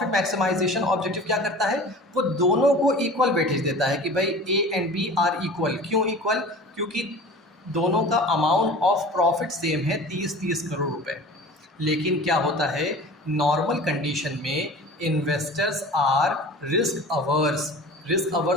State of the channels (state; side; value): normal; both; correlation 0.39